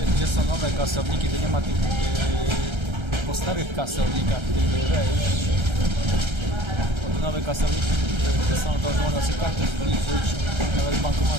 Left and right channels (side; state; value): left; late; 1.3 ms